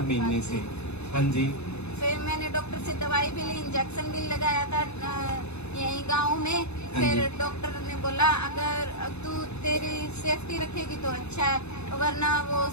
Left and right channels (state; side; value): late; right; 0.81 ms